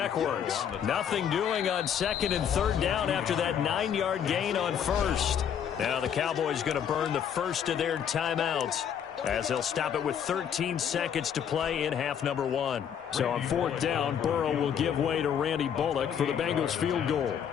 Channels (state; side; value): quieter; right; 8.5 dB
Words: Nothing doing on 2nd and 3rd down after that 9-yard gain on 1st. Now the Cowboys going to burn the first of their timeouts as they'll stop it with 13 seconds to play in half number 1. So on 4th down, Burrow will give way to Randy Bullock for the Bengals field goal.